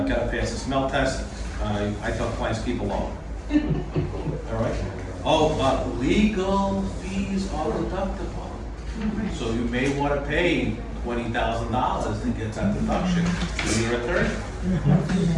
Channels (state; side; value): identical; both; correlation 1.00